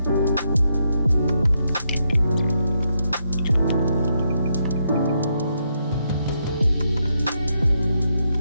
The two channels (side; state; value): both; inverted; correlation -0.79